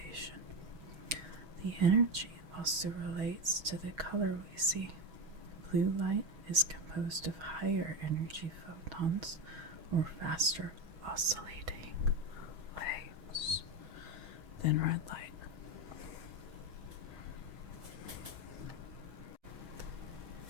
The energy also relates to the color we see. Blue light is composed of higher energy photons or faster oscillating waves than red light.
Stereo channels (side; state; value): left; late; 6.3 ms